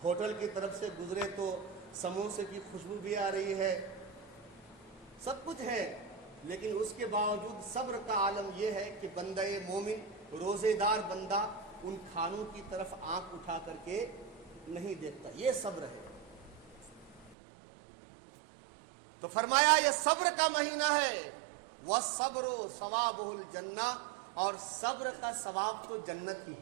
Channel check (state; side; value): drops out; left; at 17.4 s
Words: ہوٹل کی طرف سے گزرے تو سموسے کی خوشبو بھی آ رہی ہے، سب کچھ ہے، لیکن اس کے باوجود صبر کا عالم یہ ہے کہ بندہ مومن، روزے دار بندہ ان کھانوں کی طرف آنکھ اٹھا کر کے نہیں دیکھتا، یہ صبر ہے۔ تو فرمایا یہ صبر کا مہینہ ہے، وَالصَّبْرُ ثَوَابُهُ الْجَنَّةُ، اور صبر کا ثواب تو جنت ہی